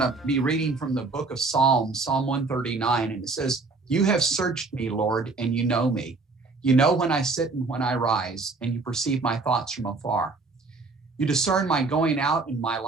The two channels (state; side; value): quieter; left; 3.8 dB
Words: be reading from the book of Psalms, Psalm 139. And it says, "You have searched me, Lord, and you know me. You know when I sit and when I rise, and you perceive my thoughts from afar. You discern my going out and my